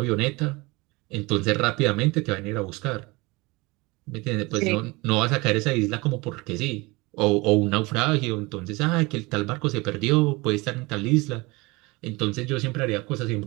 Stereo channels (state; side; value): quieter; left; 24.1 dB